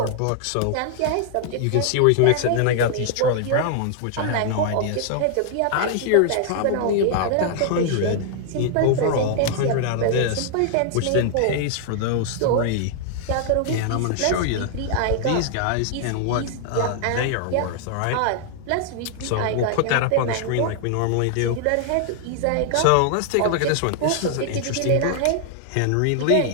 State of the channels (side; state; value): both; different; correlation 0.00